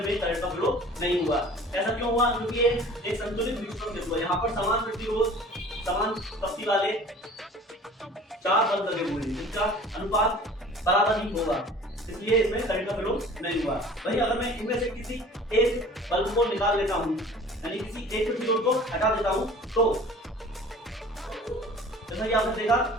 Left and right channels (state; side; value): normal; both; correlation 0.46